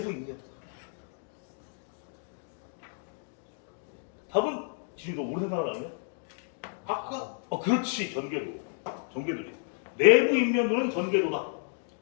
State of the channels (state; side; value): silent; right; digital silence